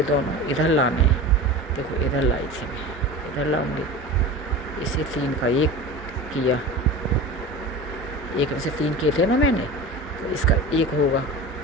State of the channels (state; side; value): normal; both; correlation 0.32